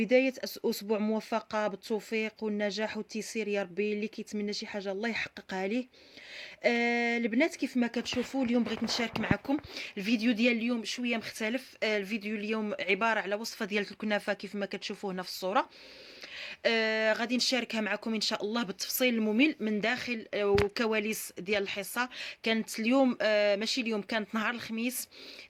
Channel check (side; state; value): both; identical; correlation 1.00